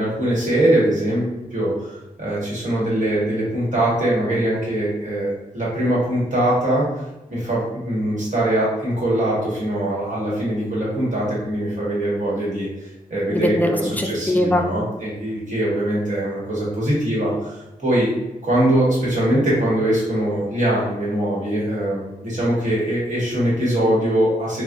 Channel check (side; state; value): both; normal; correlation 0.72